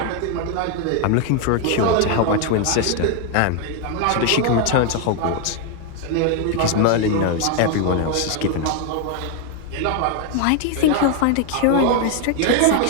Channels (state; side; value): different; both; correlation 0.01